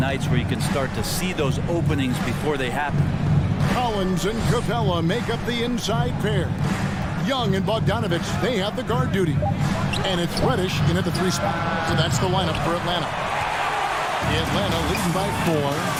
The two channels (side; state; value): both; identical; correlation 1.00